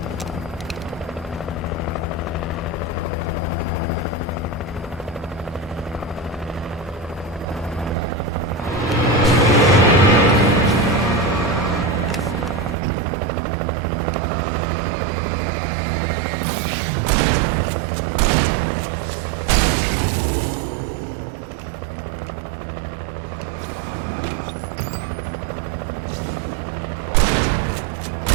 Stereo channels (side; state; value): left; drops out; at 12.8 s